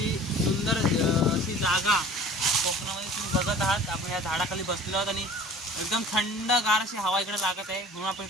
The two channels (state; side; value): normal; both; correlation 0.45